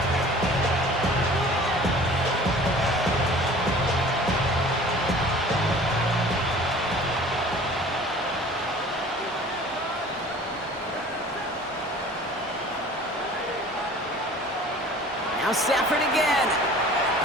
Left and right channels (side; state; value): both; normal; correlation 0.46